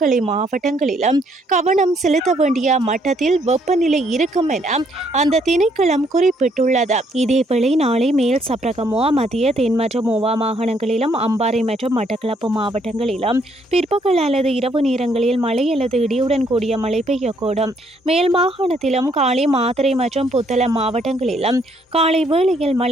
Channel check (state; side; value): normal; both; correlation 0.69